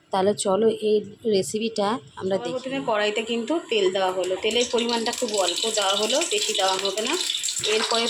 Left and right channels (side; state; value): both; identical; correlation 1.00